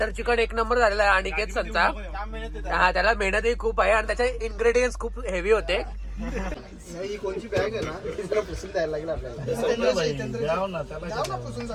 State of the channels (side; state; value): both; identical; correlation 1.00